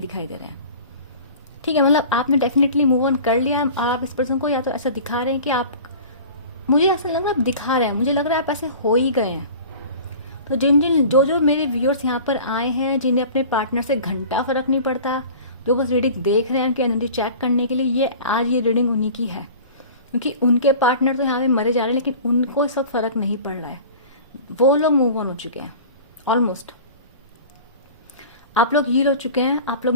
दिखाई दे रहे हैं। ठीक है, मतलब आपने डेफिनेटली मूव ऑन कर लिया है, और आप इस पर्सन को या तो ऐसा दिखा रहे हैं कि आप, मुझे ऐसा लग रहा है आप दिखा रहे हैं, मुझे लग रहा है आप ऐसे हो ही गए हैं। तो जो मेरे व्यूअर्स यहाँ पर आए हैं, जिन्हें अपने पार्टनर से घंटा फर्क नहीं पड़ता, जो बस रीडिंग देख रहे हैं उनकी एनर्जी चेक करने के लिए, ये आज ये रीडिंग उन्हीं की है, क्योंकि उनके पार्टनर तो यहाँ पे मरे जा रहे हैं, लेकिन उनको इस वक्त फर्क नहीं पड़ रहा है। वो लोग मूव ऑन हो चुके हैं ऑलमोस्ट। आप लोग हील हो चुके हैं, आप लोग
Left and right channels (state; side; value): inverted; both; correlation -0.40